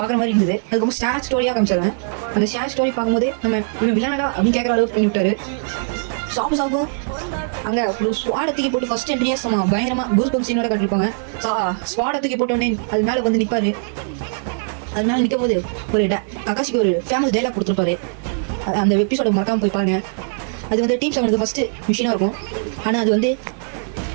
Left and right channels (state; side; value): silent; left; digital silence